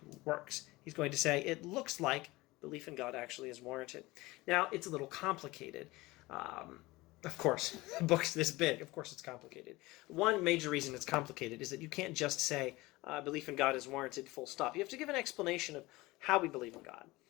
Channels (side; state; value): right; quieter; 20.7 dB